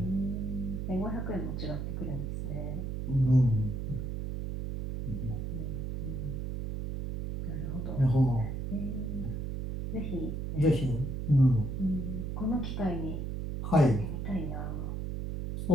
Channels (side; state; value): right; noise; hum, 4 dB below the sound